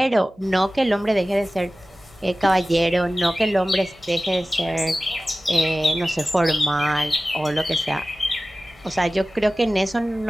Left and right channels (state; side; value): noise; right; hum, 30 dB below the sound